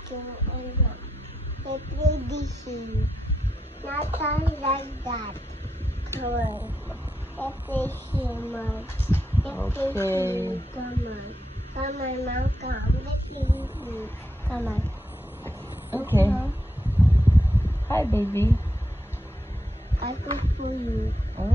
and I play dishes. Not like that. Come on. I play humor. I play Okay. humor. Come on. Come on, Mom. Come. Let's play humor. Come on. Okay. Hi, baby. I cook for you.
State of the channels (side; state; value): both; normal; correlation 0.83